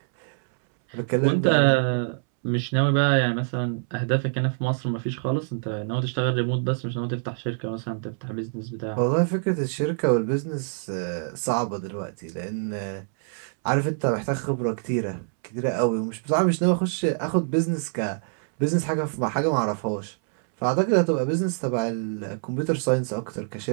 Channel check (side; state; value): left; silent; 61 dB below the other